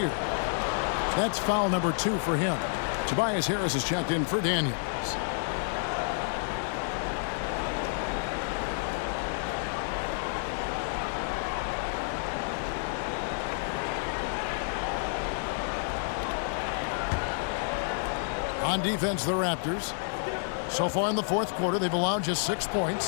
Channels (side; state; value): right; silent; digital silence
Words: That's foul number 2 for him. Tobias Harris has checked in for Daniels. On defense, the Raptors. So far in the fourth quarter, they've allowed just 6